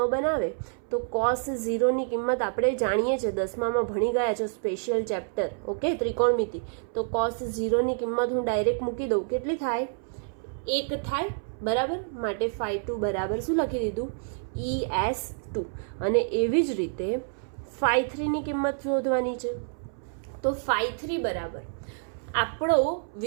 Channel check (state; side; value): silent; left; 59 dB below the other